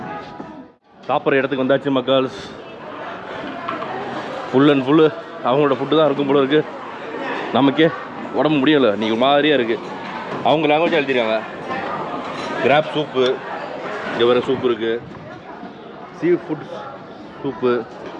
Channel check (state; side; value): identical; both; correlation 1.00